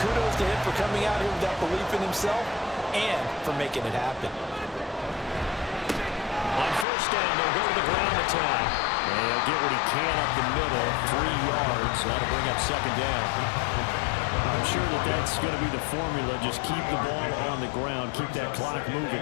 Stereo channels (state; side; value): drops out; right; at 6.9 s